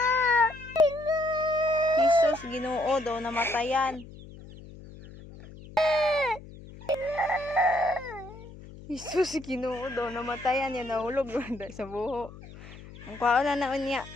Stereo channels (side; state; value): left; noise; hum, 17 dB below the sound